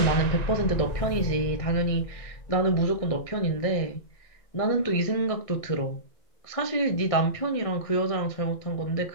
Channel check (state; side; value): late; right; 1.6 ms